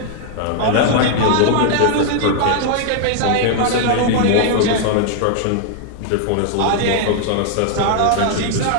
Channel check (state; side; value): different; both; correlation 0.00